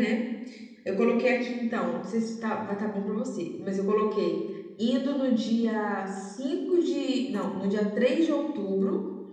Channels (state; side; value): identical; both; correlation 1.00